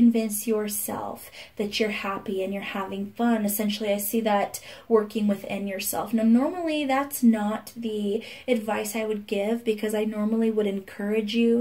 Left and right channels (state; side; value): identical; both; correlation 1.00